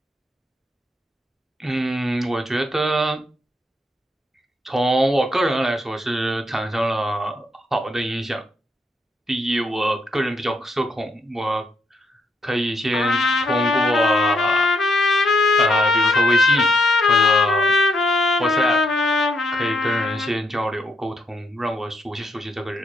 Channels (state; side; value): normal; both; correlation 0.76